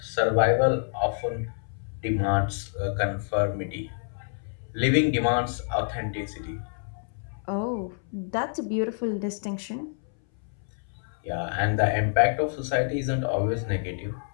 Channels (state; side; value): silent; right; 60 dB below the other